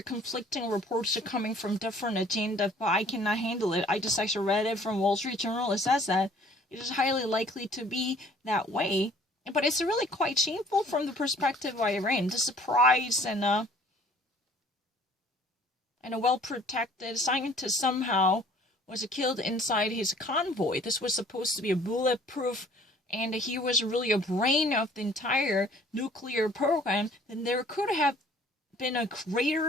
conflicting reports coming from different agendas, but I cannot handle it. I just actually read it from Wall Street Journal. It says that it is highly likely to be that way. But it's really quite shameful from the perspective of Iran. The surprise and a well-protected scientist somehow was killed inside his convoy. This was supposed to be a bulletproof, and he was really a brain of the entire nuclear program. Then there could have been a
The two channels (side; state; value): both; normal; correlation 0.55